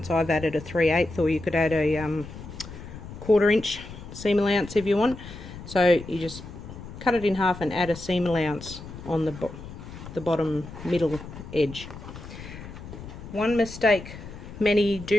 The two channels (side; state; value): left; noise; rumble, 13 dB below the sound